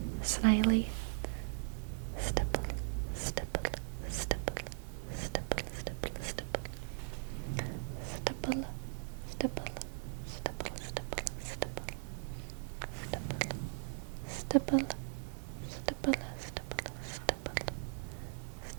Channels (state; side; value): silent; left; 52 dB below the other